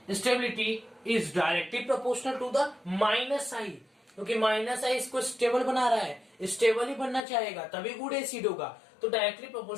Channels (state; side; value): drops out; right; at 7.2 s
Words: is directly proportional to the -i, क्योंकि -i इसको स्टेबल बना रहा है, स्टेबल ही बनना चाहेगा तभी गुड एसिड होगा। तो directly